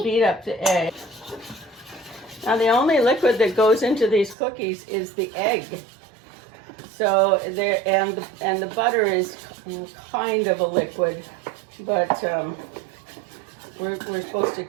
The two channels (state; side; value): drops out; left; at 4.4 s